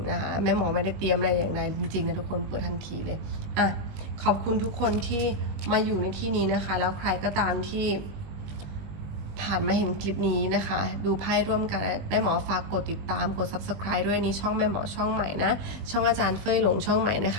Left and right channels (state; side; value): late; left; 19 ms